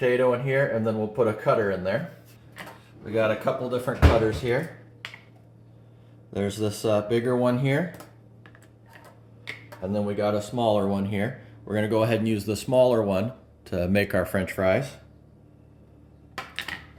in here, and then we'll put a cutter in there. We got a couple different cutters here. There's this bigger one here, and then we got a smaller one here. We're going to go ahead and use the smaller one to make our French fries.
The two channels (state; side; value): identical; both; correlation 1.00